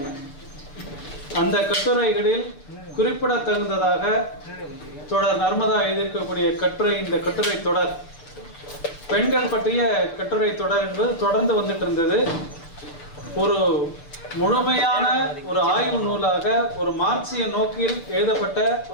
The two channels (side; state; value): right; late; 7.0 ms